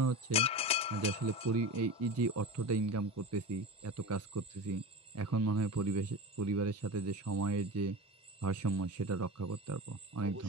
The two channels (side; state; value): both; normal; correlation 0.28